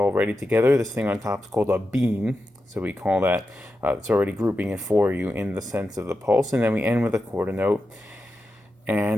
together. This thing on top is called a beam. So we call that, it's already grouping it for you in the sense of the pulse. And then we end with a quarter note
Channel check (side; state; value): both; normal; correlation 0.89